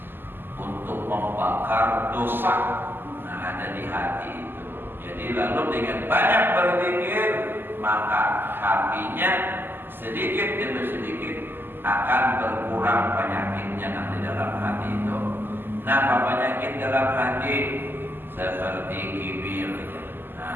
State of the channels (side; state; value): left; late; 0.096 ms